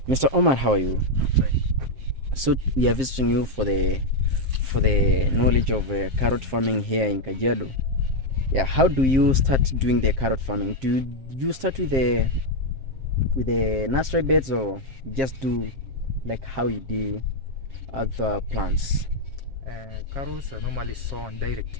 Mr. Omar, how are you? So we are visiting you for the knowledge of carrot farming here in Kajiado. Yeah, how do you start doing the carrot farming? Do you start with the nursery beds, or just do like how you do other plants? Carrots are normally sown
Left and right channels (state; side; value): late; left; 7.6 ms